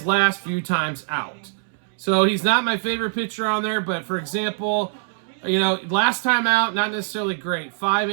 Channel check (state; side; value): silent; left; 64 dB below the other